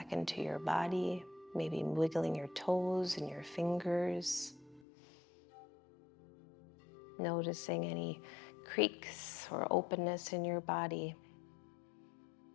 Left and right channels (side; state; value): right; drops out; at 4.9 s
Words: into your body, maybe wiggling your toes and your fingers. Noticing any creaks or openness in your body.